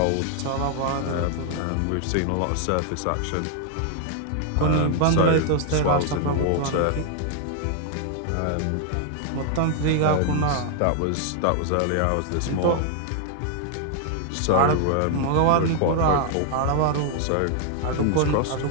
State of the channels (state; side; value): different; both; correlation 0.00